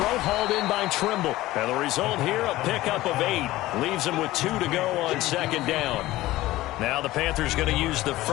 hauled in by Trimble. And the result here, a pickup of 8. Leaves them with 2 to go on 2nd down. Now the Panthers going to use the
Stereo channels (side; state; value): right; quieter; 17.0 dB